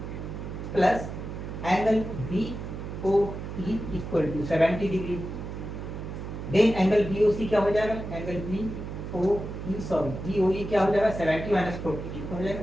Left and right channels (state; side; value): noise; right; hum, 7 dB below the sound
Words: plus angle B O E equal to 70 degree. Then angle B O C क्या हो जाएगा, angle B O E sorry B O E क्या हो जाएगा 70 माइनस 40 कितना हो